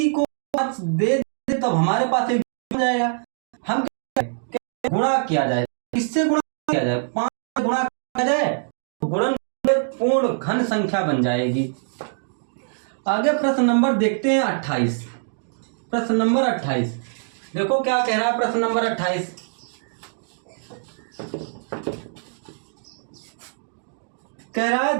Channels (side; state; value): left; silent; digital silence